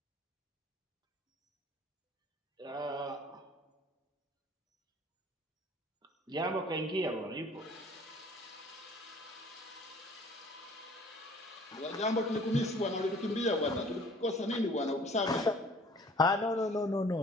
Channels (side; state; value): both; normal; correlation 0.52